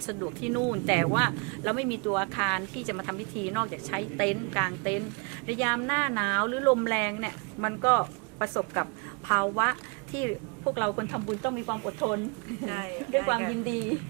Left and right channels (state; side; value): quieter; left; 33.5 dB